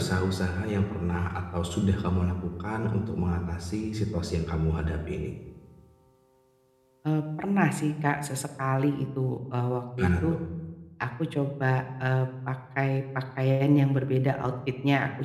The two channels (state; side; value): identical; both; correlation 1.00